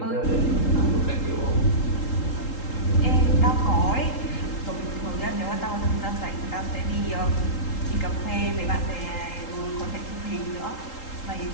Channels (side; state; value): right; late; 3.8 ms